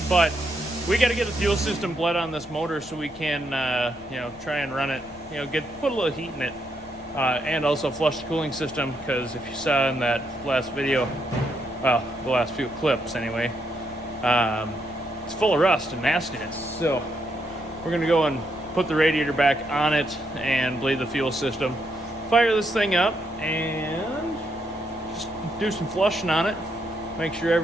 but we got to get the fuel system bled on this motor so we can, try and run it, put a little heat in it, and also flush the cooling system, because if you saw in that last video, well, the last few clips anyway, it's full of rust and nastiness. So we're going to go and put the radiator back on it and bleed the fuel system, fire this thing up, and just do some flushing on it, make sure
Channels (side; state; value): left; noise; rumble, 25 dB below the sound